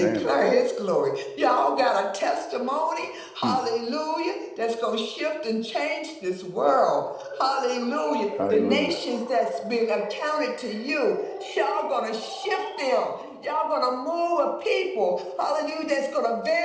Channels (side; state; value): both; identical; correlation 1.00